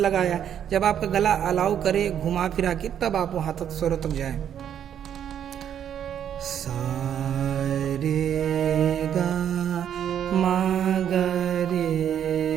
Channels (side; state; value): left; quieter; 9.4 dB